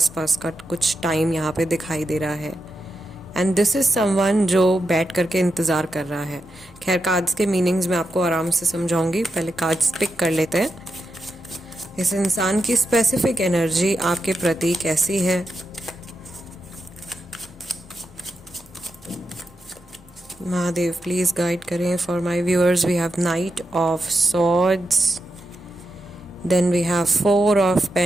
का कुछ टाइम यहाँ पे दिखाई दे रहा है। एंड दिस इज समवन जो बैठ करके इंतज़ार कर रहा है। खैर, कार्ड्स के मीनिंग्स मैं आपको आराम से समझाऊंगी, पहले कार्ड्स पिक कर लेते हैं। इस इंसान की स्पेसिफिक एनर्जी आपके प्रति कैसी है? महादेव प्लीज गाइड करें for my viewers. We have knight of swords, then we have 4 of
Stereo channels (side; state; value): both; normal; correlation 0.87